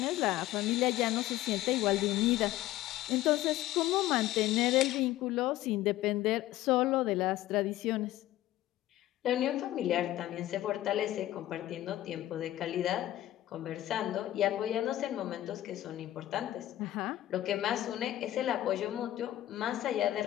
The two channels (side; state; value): right; quieter; 14.6 dB